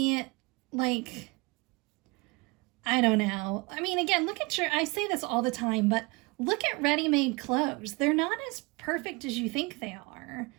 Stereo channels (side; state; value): left; quieter; 26.7 dB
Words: like, I don't know. I mean, again, look at I say this all the time, but look at ready-made clothes. They're not as perfect as you think they are.